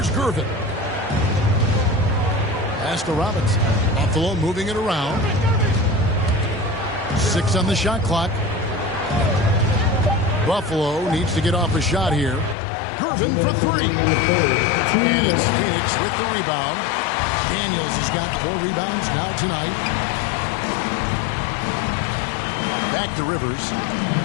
Gervin. Pass to Robinson. Buffalo moving it around. 6 on the shot clock. Buffalo needs to get off a shot here. Gervin for 3. And it's Phoenix with the rebound. Daniels has got 4 rebounds now tonight. Back to Rivers.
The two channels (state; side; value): drops out; right; at 12.6 s